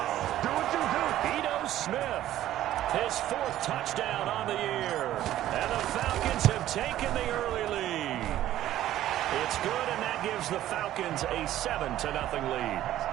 Do what you do. Ito Smith, his 4th touchdown on the year. And the Falcons have taken the early lead. It's good, and that gives the Falcons a 7-0 lead. That's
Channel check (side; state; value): left; quieter; 13.3 dB